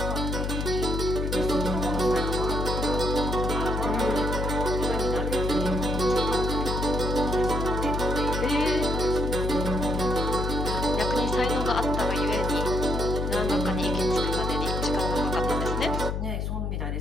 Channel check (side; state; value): left; noise; hum, 1 dB below the sound